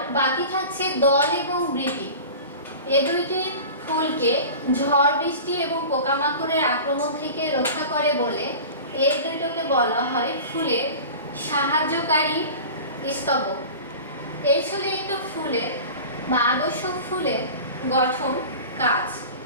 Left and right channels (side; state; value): both; inverted; correlation -0.36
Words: বাকি থাকছে দল এবং বৃতি। এই দুইটি ফুলকে ঝড় বৃষ্টি এবং পোকামাকড়ের আক্রমণ থেকে রক্ষা করে বলে এই দুইটাকে বলা হয় ফুলের সাহায্যকারী স্তবক। এই ছিল একটু ফুলের বা আদর্শ ফুলের গঠন কাজ।